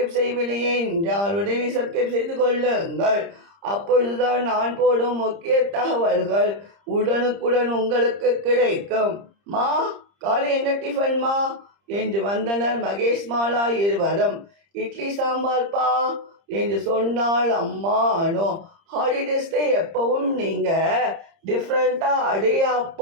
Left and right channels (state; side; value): late; left; 30 ms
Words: செய்யவில்லையே என்றால் உடனே சப்ஸ்கிரைப் செய்து கொள்ளுங்கள். அப்பொழுதுதான் நான் போடும் முக்கிய தகவல்கள் உடனுக்குடன் உங்களுக்கு கிடைக்கும். மா, காலை என்ன டிஃபன்மா என்று வந்தனர் மகேஷ் மாலா இருவரும். இட்லி சாம்பார் பா என்று சொன்னாள் அம்மா அனு. ஹாலிடேஸ்ல எப்பவும் நீங்கள் டிஃப்ரெண்ட்டாக